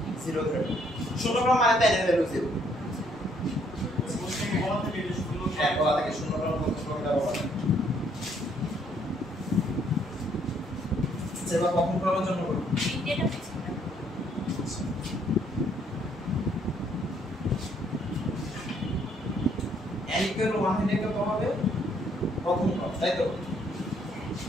0 ধরে। শূন্য ক্রম মানে তাই না, ভ্যালু 0। হ্যাঁ, বলা থাকে শূন্য ক্রম প্রথম ক্রমটা বলা। সেবা প্রথম ক্রমের জন্য করব। এটা বুঝছি না। n equal 1 হলে কত হবে? প্রথম ক্রম, তাই তো?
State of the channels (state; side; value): normal; both; correlation 0.67